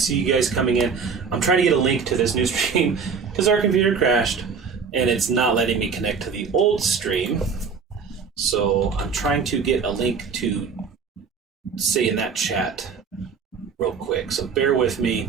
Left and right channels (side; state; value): left; quieter; 5.7 dB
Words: you guys coming in. I'm trying to get a link to this new stream because our computer crashed, and it's not letting me connect to the old stream. So I'm trying to get a link to say in that chat real quick. So bear with